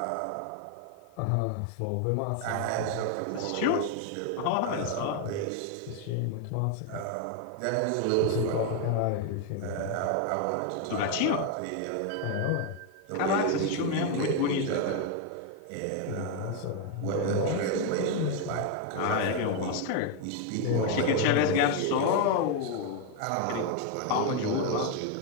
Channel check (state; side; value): different; both; correlation 0.01